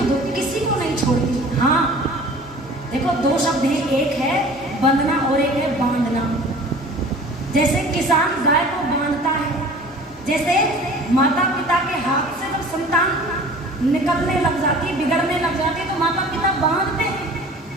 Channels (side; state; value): both; normal; correlation 0.45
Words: दुख किसी को नहीं छोड़ती। हाँ देखो, दो शब्द हैं, एक है बंधना और एक है बांधना। जैसे किसान गाय को बांधता है, जैसे माता पिता के हाथ से जब संतान निकलने लग जाती है, बिगड़ने लग जाती है, तो माता पिता बांधते हैं।